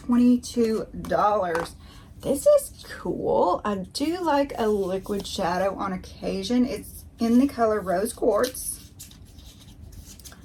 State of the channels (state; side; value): identical; both; correlation 1.00